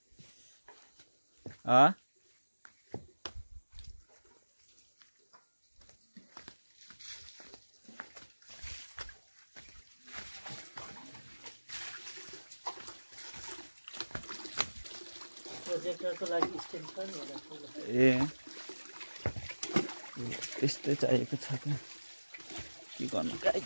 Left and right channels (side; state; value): both; inverted; correlation -1.00